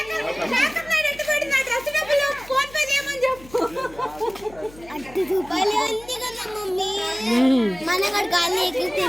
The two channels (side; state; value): left; noise; hum, 21 dB below the sound